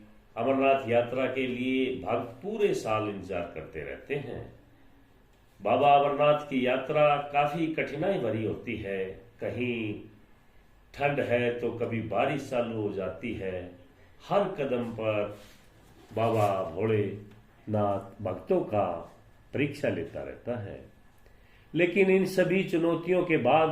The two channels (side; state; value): both; identical; correlation 1.00